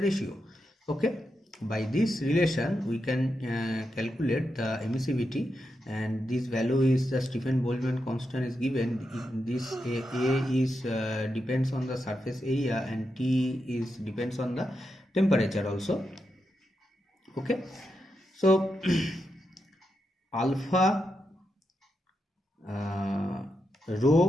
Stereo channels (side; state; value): both; normal; correlation 0.86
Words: Okay, by this relation we can calculate the emissivity, and this value is the Stephen Boltzmann constant is given. This A is depends on the surface area, and T is depends on the temperature also. Okay, so alpha